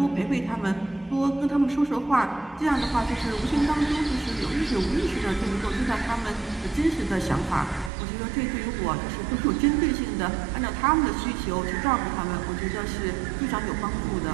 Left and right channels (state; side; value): drops out; left; at 7.9 s